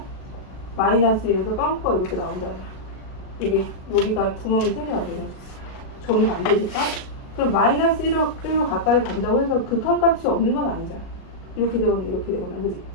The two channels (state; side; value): late; right; 37 ms